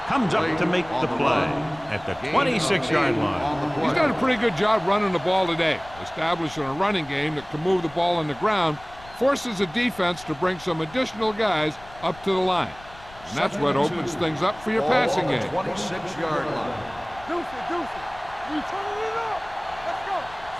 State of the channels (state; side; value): noise; left; rumble, 21 dB below the sound